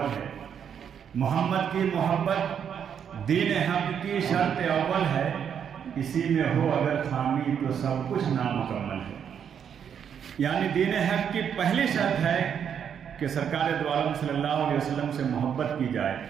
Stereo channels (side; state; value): left; quieter; 8.1 dB